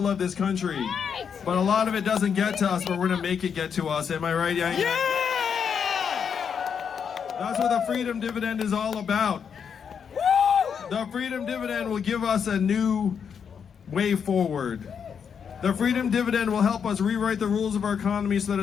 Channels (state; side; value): quieter; right; 7.1 dB